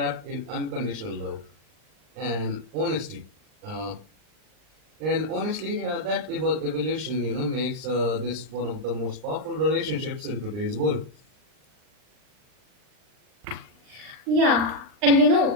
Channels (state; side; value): late; left; 39 ms